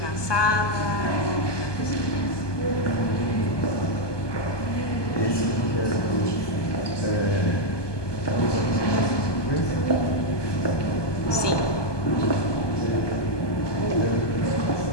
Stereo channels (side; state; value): right; late; 1.2 ms